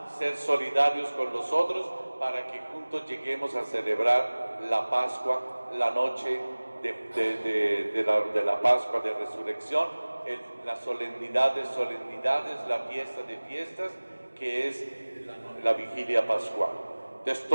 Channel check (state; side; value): inverted; both; correlation -1.00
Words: ser solidarios con los otros, para que juntos lleguemos a celebrar la Pascua, la noche de la Pascua de Resurrección, la solemnidad de solemnidades, la fiesta de fiestas, que es la vigilia pascual. Entonces